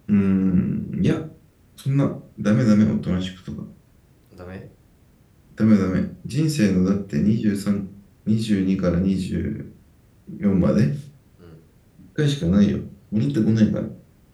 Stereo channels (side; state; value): both; identical; correlation 1.00